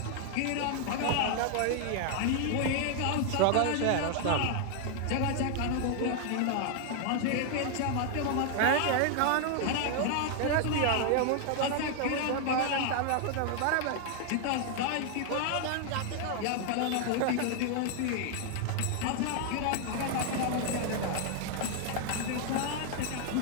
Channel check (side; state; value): both; different; correlation 0.00